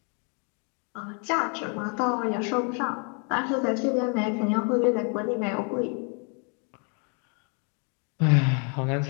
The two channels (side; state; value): right; quieter; 37.8 dB